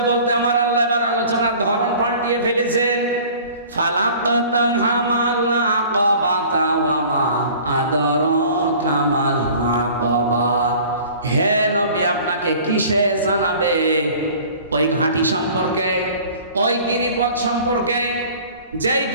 বলতে আমার আল্লাহ এবার আলোচনার ধরন পাল্টিয়ে ফেলেছেন। ফালাকতাহামাল আকাবাতা ওয়া মা আদরাকা মাল আকাবা। হে নবী, আপনাকে কিসে জানাবে? ওই ঘাঁটি সম্পর্কে, ওই গিরিপথ সম্পর্কে, যেই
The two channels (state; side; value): inverted; both; correlation -0.47